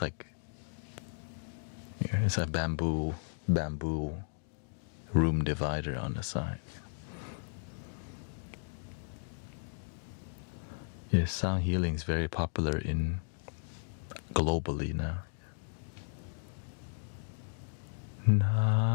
like it's a bamboo room divider on the side. Yes, sound healing is very popular globally now.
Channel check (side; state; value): right; silent; digital silence